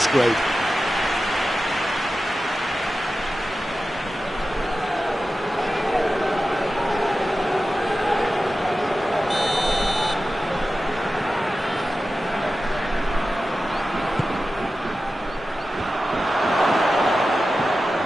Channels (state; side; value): normal; both; correlation 0.93